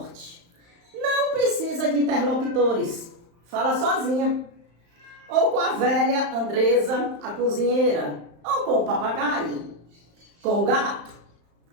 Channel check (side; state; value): left; late; 35 ms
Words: Não precisa de interlocutores, fala sozinha. Ou com a velha Andresa, a cozinheira, ou com o papagaio, com o gato,